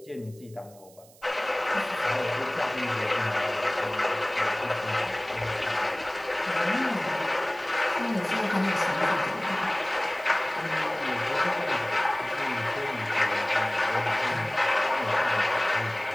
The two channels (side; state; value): right; noise; hiss, 25 dB below the sound